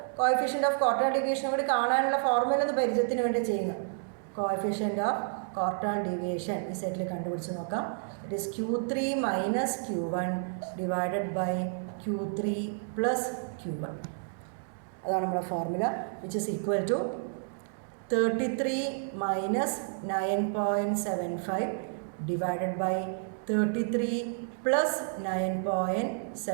കോഎഫിഷ്യൻ്റ് ഓഫ് ക്വാർട്ടൈൽ ഡീവിയേഷൻ കൂടി കാണാനുള്ള ഫോർമുല ഒന്ന് പരിചയത്തിന് വേണ്ടി ചെയ്യുക. കോഎഫിഷ്യൻ്റ് ഓഫ് ക്വാർട്ടൈൽ ഡീവിയേഷൻ ഈ സെറ്റിൽ കണ്ടുപിടിച്ച് നോക്കാം. It is Q3 minus Q1 divided by Q3 plus Q1. അതാണ് നമ്മുടെ formula, which is equal to 33 minus 9.75 divided by 33 plus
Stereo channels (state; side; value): silent; left; digital silence